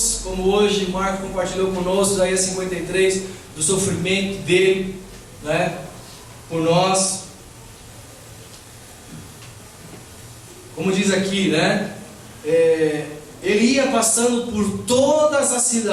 como hoje Marco compartilhou conosco, Isaías 53, do sofrimento dele, né, por nós. Como diz aqui, né, ele ia passando por todas as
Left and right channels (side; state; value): both; identical; correlation 1.00